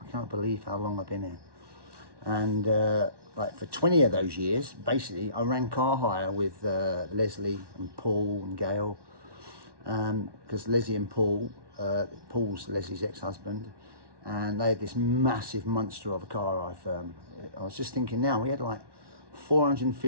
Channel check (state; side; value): late; left; 1.1 ms